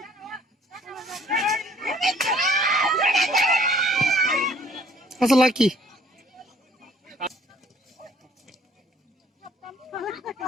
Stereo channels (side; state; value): both; normal; correlation 0.58